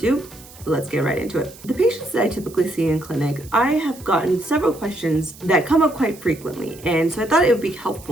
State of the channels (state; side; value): noise; right; hiss, 20 dB below the sound